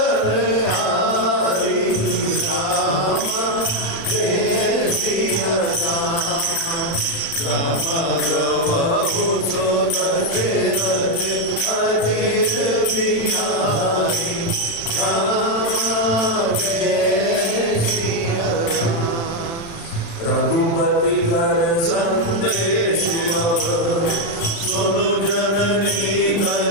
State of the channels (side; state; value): right; late; 36 ms